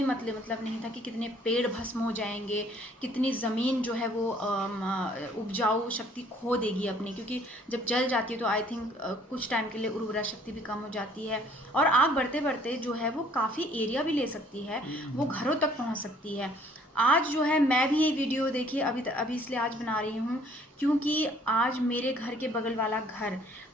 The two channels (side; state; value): both; normal; correlation 0.59